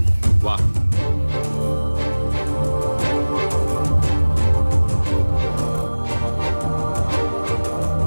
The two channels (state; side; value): inverted; both; correlation -1.00